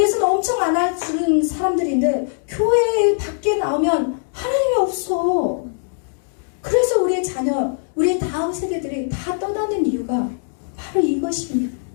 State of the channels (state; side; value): silent; right; digital silence